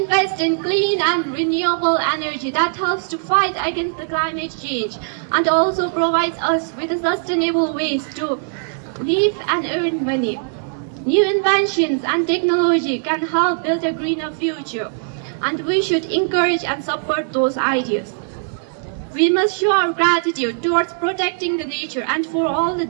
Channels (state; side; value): silent; left; digital silence